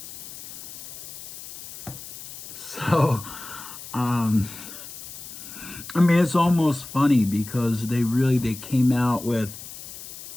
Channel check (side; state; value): left; noise; hiss, 13 dB below the sound